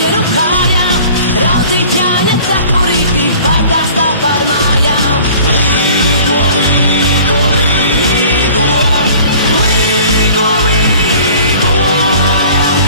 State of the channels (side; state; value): both; inverted; correlation -0.47